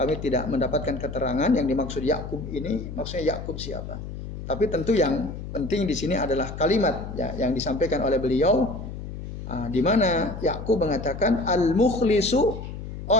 tidak mendapatkan keterangan yang dimaksud Yaqub ini maksudnya Yaqub siapa. Tapi tentu yang penting di sini adalah kalimat ya, yang disampaikan oleh beliau, di mana Yaqub mengatakan al-mukhlisu,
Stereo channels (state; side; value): noise; left; hum, 9 dB below the sound